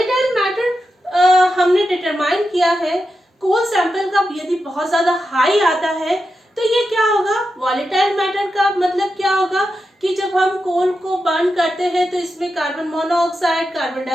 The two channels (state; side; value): normal; both; correlation 0.89